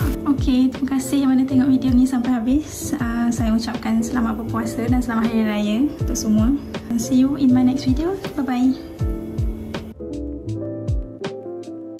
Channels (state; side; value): identical; both; correlation 1.00